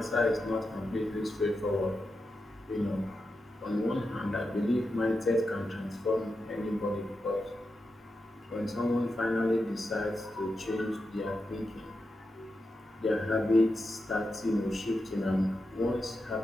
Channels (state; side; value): normal; both; correlation 0.89